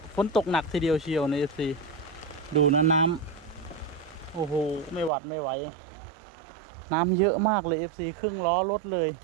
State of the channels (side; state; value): left; drops out; at 5.1 s